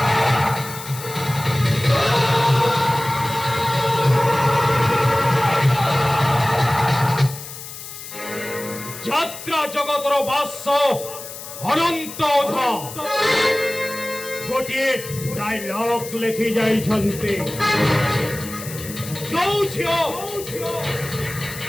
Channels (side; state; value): left; noise; hiss, 12 dB below the sound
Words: যাত্রা জগতর বাস্য অনন্ত অধা গোটিয়ে ডায়লগ লেখি যাইছন্তি ଯୋଉ ଝିଅ